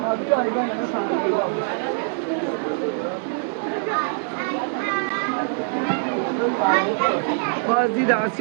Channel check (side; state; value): left; silent; digital silence